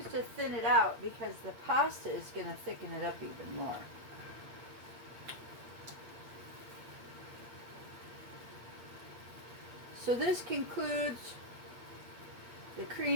to thin it out because the pasta is going to thicken it up even more. So this concludes the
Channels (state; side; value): late; left; 8.5 ms